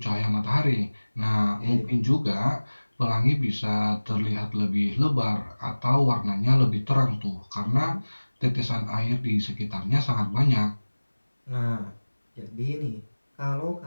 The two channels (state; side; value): inverted; both; correlation -1.00